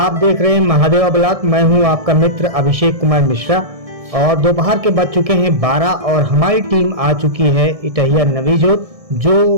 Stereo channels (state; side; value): late; left; 1.6 ms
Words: देख रहे हैं महादेवा ब्लॉग। मैं हूं आपका मित्र अभिषेक कुमार मिश्रा और दोपहर के बज चुके हैं 12 और हमारी टीम आ चुकी है इटहिया नवीजोत, जो